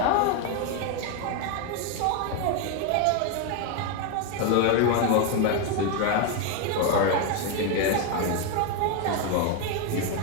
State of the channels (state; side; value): different; both; correlation 0.01